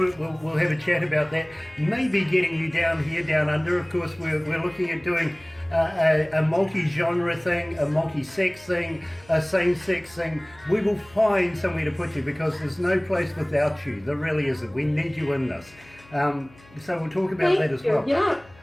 it. We'll have a chat about that. Maybe getting you down here, down under. Of course, we're looking at doing a multi-genre thing, a multi-sex thing, a same-sex thing. We will find somewhere to put you because there's no place without you. There really isn't. We need you in this. So we'll talk about that as well. Yeah.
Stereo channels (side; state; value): left; noise; hum, 26 dB below the sound